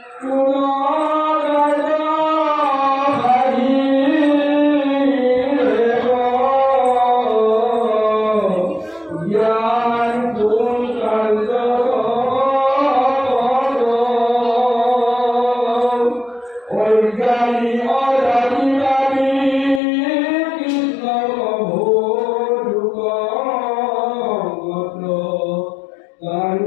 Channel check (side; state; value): right; drops out; at 19.8 s